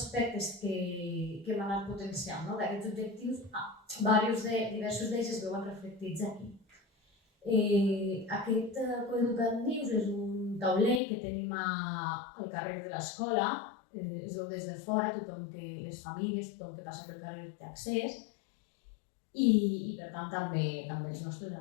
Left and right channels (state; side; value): drops out; right; at 11.0 s